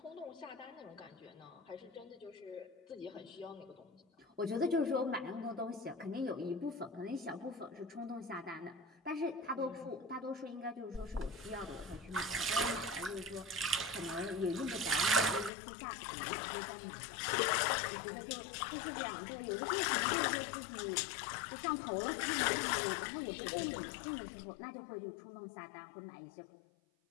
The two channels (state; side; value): drops out; right; at 15.5 s